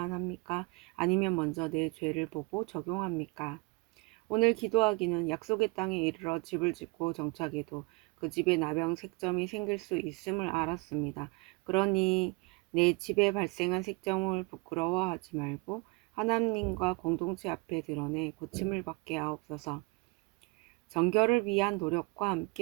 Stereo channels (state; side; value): quieter; left; 27.3 dB